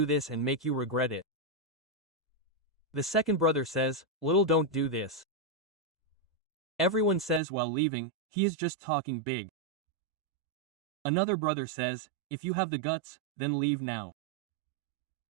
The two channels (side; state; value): left; drops out; at 7.4 s